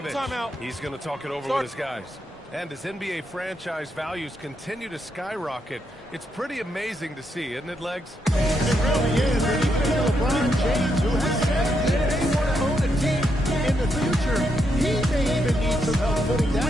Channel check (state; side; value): normal; both; correlation 0.80